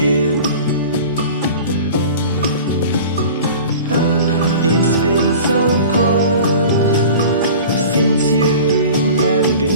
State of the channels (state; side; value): inverted; both; correlation -0.39